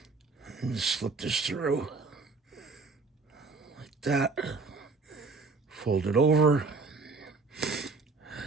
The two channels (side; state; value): left; quieter; 4.0 dB